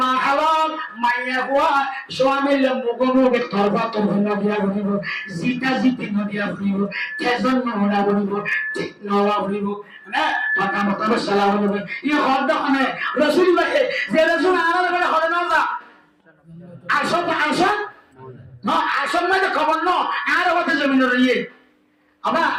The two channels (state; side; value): identical; both; correlation 1.00